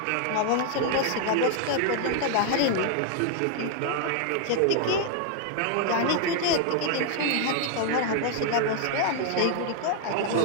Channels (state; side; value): different; both; correlation 0.00